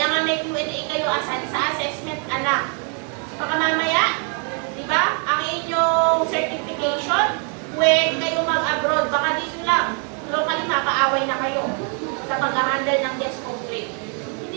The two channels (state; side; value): quieter; left; 39.8 dB